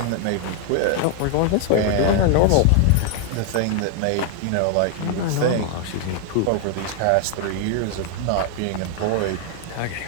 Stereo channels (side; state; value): both; different; correlation 0.00